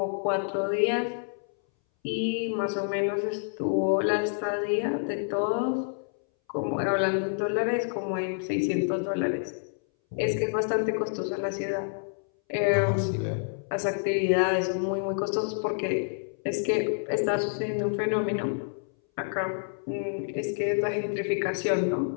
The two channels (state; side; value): silent; right; 59 dB below the other